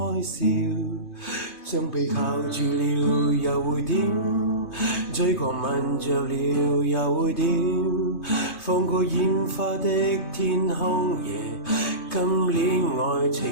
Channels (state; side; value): late; right; 2.5 ms